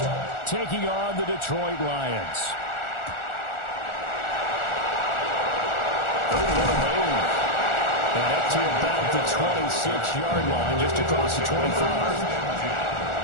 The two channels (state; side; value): late; right; 1.4 ms